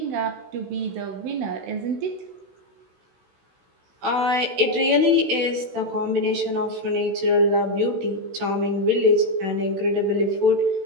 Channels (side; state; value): left; late; 16 ms